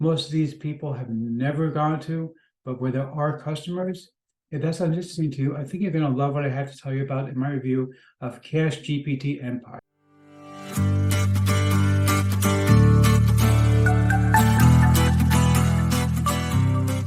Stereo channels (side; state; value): both; identical; correlation 1.00